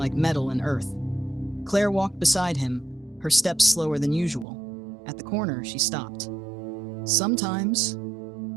metal and earth. Claire walked beside him, her steps slower than usual. At the corner, she stopped. "Sometimes,"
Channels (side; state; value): left; drops out; at 4.5 s